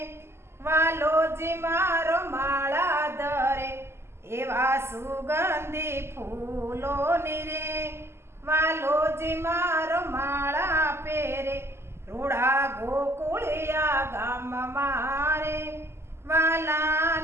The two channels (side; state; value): left; late; 0.12 ms